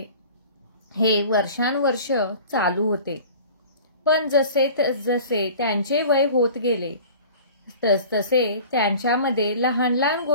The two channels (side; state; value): both; inverted; correlation -0.42